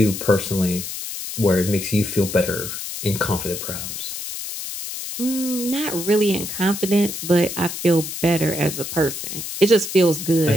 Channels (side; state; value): left; noise; hiss, 7 dB below the sound